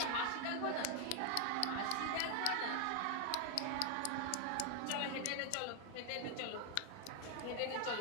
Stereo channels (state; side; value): different; both; correlation 0.00